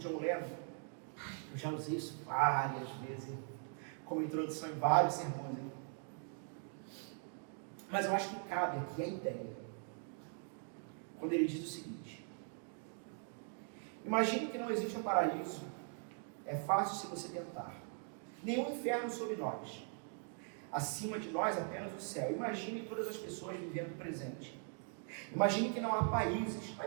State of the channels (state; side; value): silent; left; 50 dB below the other